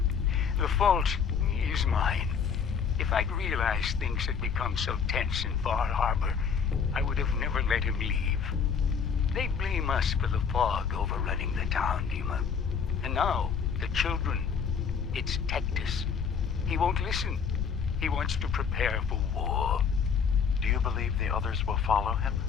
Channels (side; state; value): right; quieter; 6.5 dB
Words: The fault is mine. If I'd realized things had become so tense in Far Harbor, I would have never let him leave. They blame us for the fog overrunning the town, Dima. And now, the children. It's Tectus. He won't listen. He wants to prepare for war. Do you believe the others will follow him?